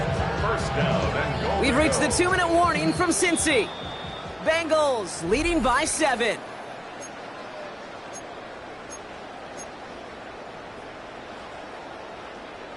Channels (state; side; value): identical; both; correlation 1.00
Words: 1st down and goal. We've reached the 2-minute warning from Cincy. Bengals leading by 7.